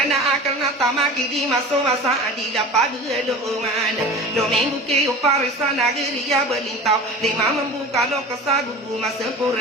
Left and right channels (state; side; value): normal; both; correlation 0.35